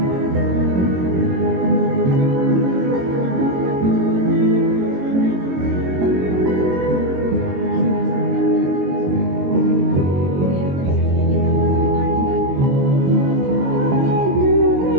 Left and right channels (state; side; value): late; left; 22 ms